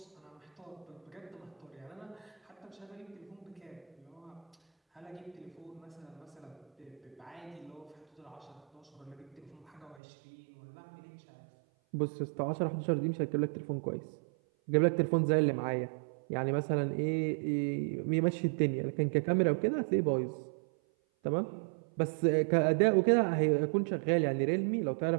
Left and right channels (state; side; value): drops out; left; at 10.0 s